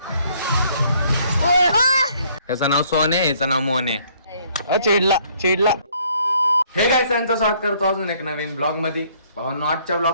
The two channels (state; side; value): inverted; both; correlation -0.63